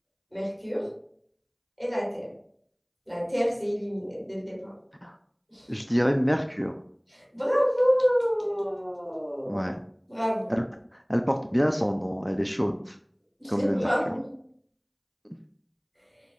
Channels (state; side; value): identical; both; correlation 1.00